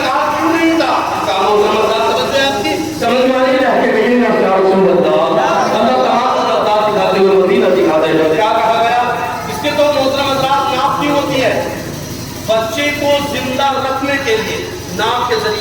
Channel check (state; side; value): identical; both; correlation 1.00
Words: کہا کیوں نہیں تھا؟ کہا محترم حضرات سمجھ میں آپ کی سمجھ میں آئی ہے کہ نہیں ہے یا رسول اللہ، اللہ تعالیٰ عطا دکھاتے ہوئے مدینہ دکھاتے ہیں۔ کیا کہا گیا؟ اس کے تو محترم حضرات ناپ نہیں ہوتی ہے، بچے کو زندہ رکھنے کے لیے ناپ کے